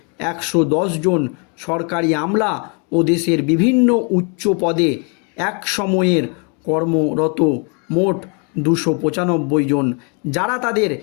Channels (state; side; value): quieter; right; 36.2 dB